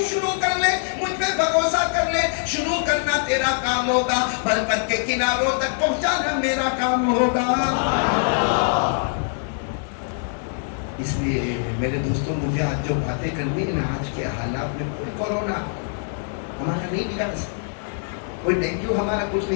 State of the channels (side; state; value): right; silent; 63 dB below the other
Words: شروع کر لے, مجھ پہ بھروسہ کر لے, شروع کرنا تیرا کام ہوگا, برکت کے کناروں تک پہنچانا میرا کام ہوگا. اس لیے میرے دوستوں مجھے آج جو باتیں کرنی ہے نا, آج کے حالات میں کوئی کورونا ہمارا نہیں بگاڑ سکتا, کوئی ڈینگو ہمارا کچھ